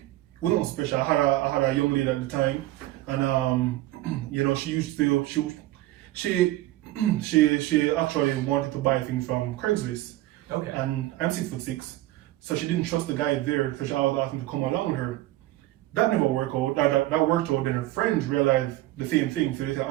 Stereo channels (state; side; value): quieter; left; 16.4 dB